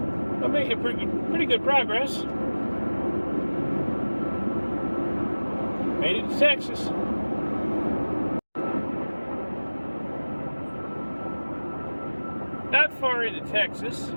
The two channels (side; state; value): both; inverted; correlation -1.00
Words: We're making pretty good progress. Made it to Texas. Not far into Texas.